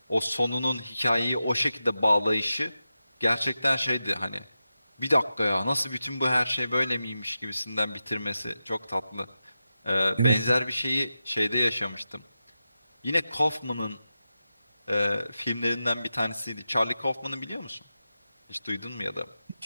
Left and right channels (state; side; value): inverted; both; correlation -0.91